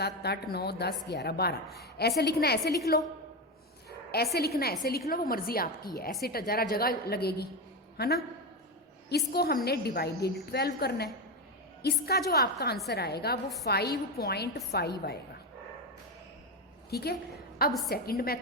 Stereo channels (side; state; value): both; normal; correlation 0.14